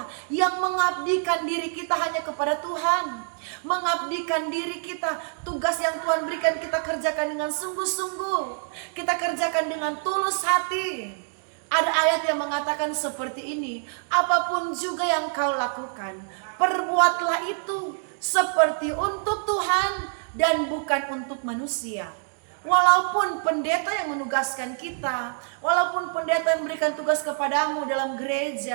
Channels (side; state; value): left; silent; 61 dB below the other